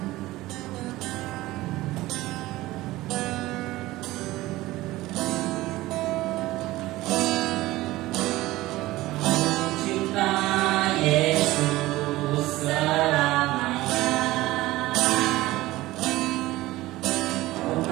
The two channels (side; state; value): left; quieter; 17.7 dB